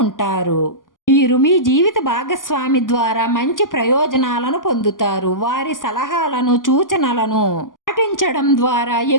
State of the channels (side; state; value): right; late; 0.89 ms